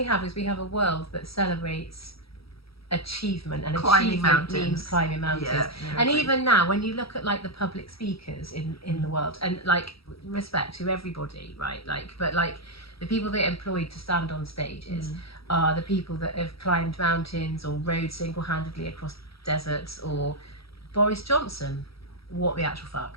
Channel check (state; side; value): late; right; 0.76 ms